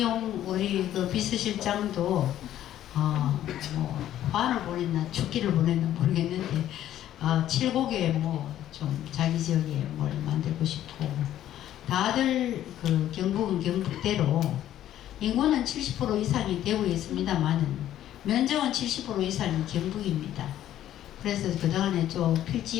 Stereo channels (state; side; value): quieter; right; 12.1 dB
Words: 우리 그 비서실장도 뭐 화를 보냈나 축기를 보냈나 모르겠는데 칠곡에 뭐 좀 자기 지역에 뭘 만들고 싶고 다들 그 경북은 경북대로 인구는 70% 이상이 되고 있습니다만은 면적은 70% 이상이 경북입니다. 그래서 그동안에 좀